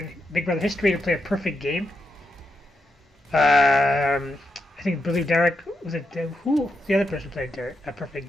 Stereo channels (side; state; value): both; normal; correlation 0.84